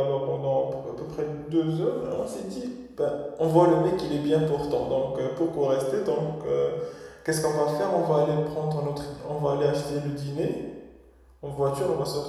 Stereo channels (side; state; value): both; identical; correlation 1.00